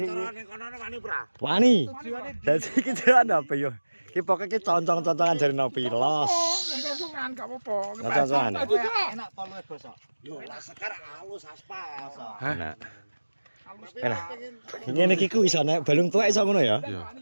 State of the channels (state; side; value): inverted; both; correlation -1.00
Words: wani. Dadi iki jalan apa yo? Ki pokoke ki concong-concongan jare nopi los. Concongan gak apa-apa. Concongan. Enak poluwe bosok. Yo enak sekar halus aspal. Enak. Enak. Ngene iki ku iso nek balung tuwek iso ngono ya? Iya.